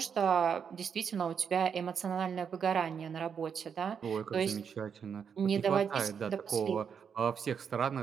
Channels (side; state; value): left; quieter; 7.0 dB